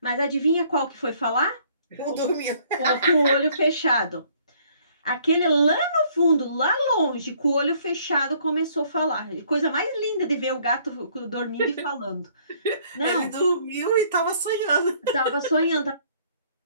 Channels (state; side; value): inverted; both; correlation -0.61